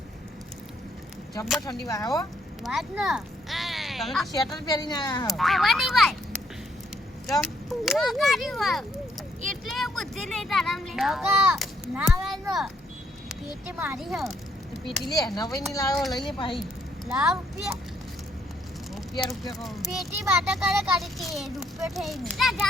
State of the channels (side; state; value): both; normal; correlation 0.71